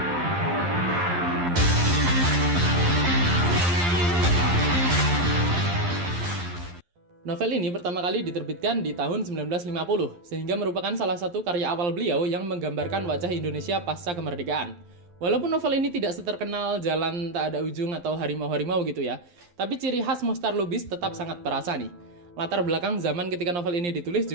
Novel ini pertama kali diterbitkan di tahun 1950, sehingga merupakan salah satu karya awal beliau yang menggambarkan wajah Indonesia pasca kemerdekaan. Walaupun novel ini tidak seterkenal Jalan Tak Ada Ujung atau Harimau-Harimau gitu tapi ciri khas Mohtar Lubis tetap sangat terasa nih. Latar belakang zaman ketika novel ini ditulis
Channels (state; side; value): late; left; 11 ms